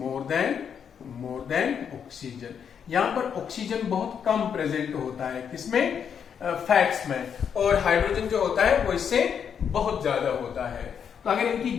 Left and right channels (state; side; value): quieter; right; 7.6 dB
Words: than oxygen. यहां पर ऑक्सीजन बहुत कम प्रेजेंट होता है। किसमें? फैट्स में, और हाइड्रोजन जो होता है वो इससे बहुत ज्यादा होता है। तो अगर इनकी